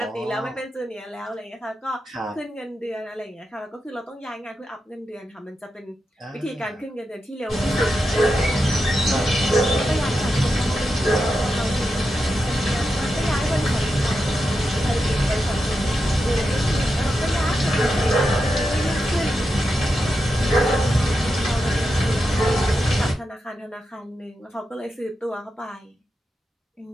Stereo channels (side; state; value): both; normal; correlation 0.88